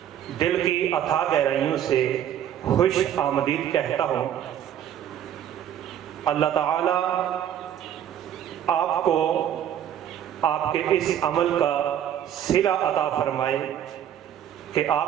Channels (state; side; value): quieter; left; 10.3 dB